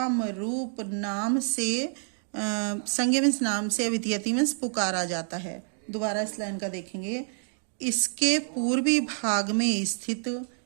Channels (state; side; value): silent; left; 57 dB below the other